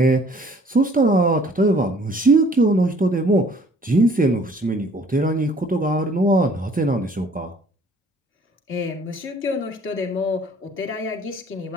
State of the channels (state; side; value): normal; both; correlation 0.56